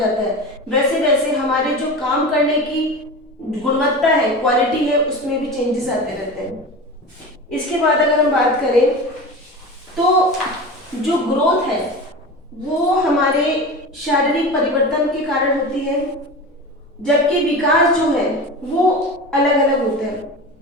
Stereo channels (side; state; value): both; normal; correlation 0.29